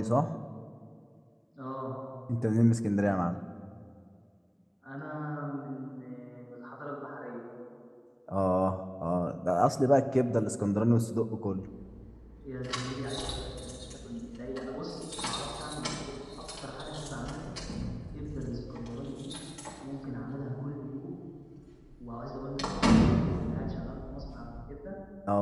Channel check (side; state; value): both; identical; correlation 1.00